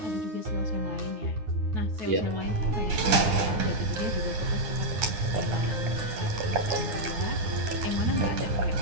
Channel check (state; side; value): late; left; 10 ms